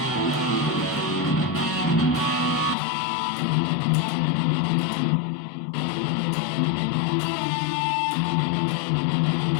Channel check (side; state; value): right; drops out; at 2.8 s